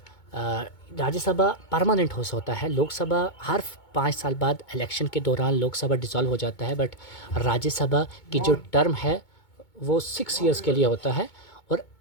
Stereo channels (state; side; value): late; right; 2.2 ms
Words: राज्यसभा परमानेंट हाउस होता है। लोकसभा हर 5 साल बाद इलेक्शन के दौरान लोकसभा डिसॉल्व हो जाता है, बट राज्यसभा की जो टर्म है वो 6 इयर्स के लिए होता है, और